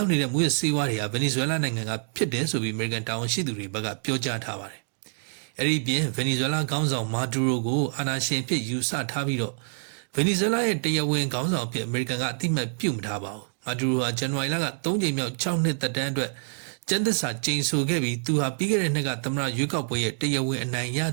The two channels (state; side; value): silent; left; digital silence